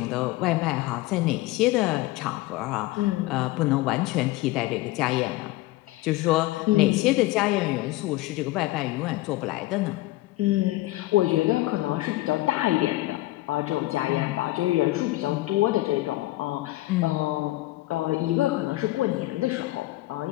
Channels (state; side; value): quieter; right; 18.3 dB